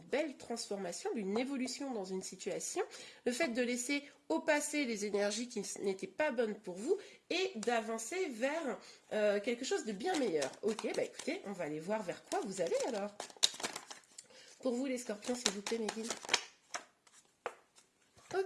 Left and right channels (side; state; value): both; identical; correlation 1.00